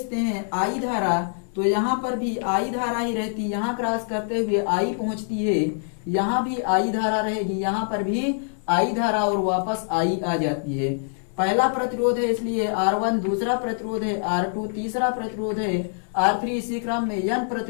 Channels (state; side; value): silent; right; digital silence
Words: हैं, आई धारा, तो यहाँ पर भी आई धारा ही रहती, यहाँ क्रॉस करते हुए आई पहुंचती है, यहाँ भी आई धारा रहेगी, यहाँ पर भी आई धारा और वापस आई आ जाती है। पहला प्रतिरोध है इसलिए R1, दूसरा प्रतिरोध है R2, तीसरा प्रतिरोध है R3, इसी क्रम में n